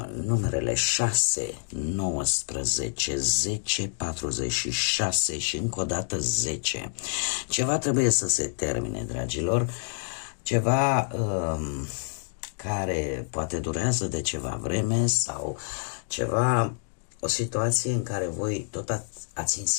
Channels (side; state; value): right; silent; digital silence